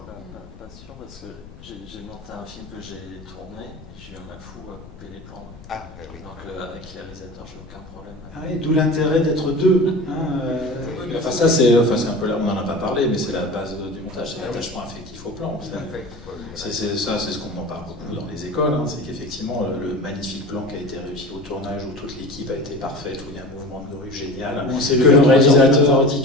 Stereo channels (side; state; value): left; noise; rumble, 19 dB below the sound